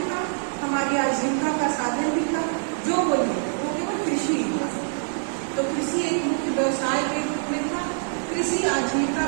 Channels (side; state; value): left; silent; digital silence